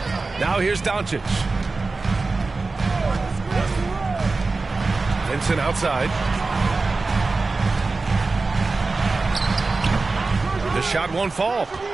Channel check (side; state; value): left; quieter; 3.7 dB